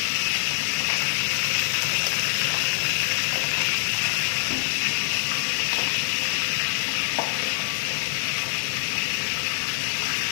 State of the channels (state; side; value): silent; right; digital silence